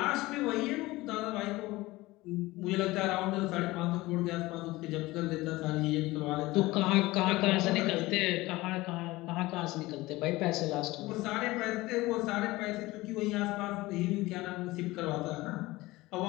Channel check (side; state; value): right; quieter; 19.6 dB